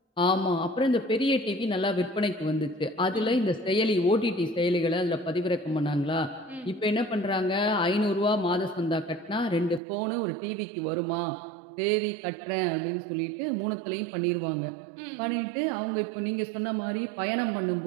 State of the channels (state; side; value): drops out; left; at 9.8 s